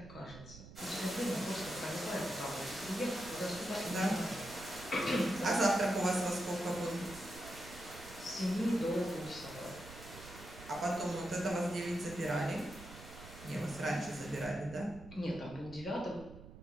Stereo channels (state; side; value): noise; right; rumble, 15 dB below the sound